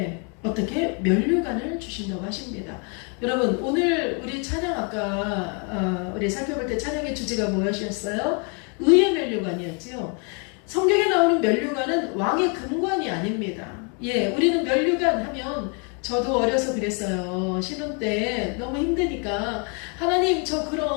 어떻게 면류관을 주신다고 하십니다. 여러분 오늘 우리 찬양 아까 우리 살펴볼 때 찬양의 주제가 무엇이었어요? 의의 면류관이었죠. 성경에 나오는 면류관은 왕의 금관이 아닙니다. 우리는 면류관 하면 저도 어려서 그랬어요. 신혼 때 너무 힘드니까 하나님 저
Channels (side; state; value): right; quieter; 36.7 dB